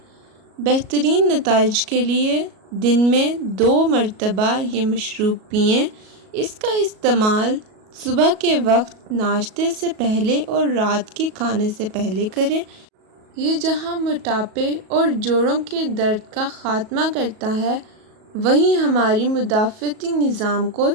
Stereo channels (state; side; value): late; left; 37 ms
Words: بہترین نتائج کے لیے دن میں 2 مرتبہ یہ مشروب پئیں۔ اس کا استعمال صبح کے وقت ناشتے سے پہلے اور رات کے کھانے سے پہلے کریں۔ یہ جہاں موٹاپے اور جوڑوں کے درد کا خاتمہ کرتا ہے، وہیں ہماری مدافعتی نظام کو